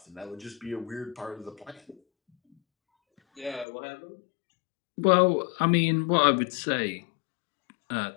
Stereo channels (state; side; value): drops out; right; at 3.7 s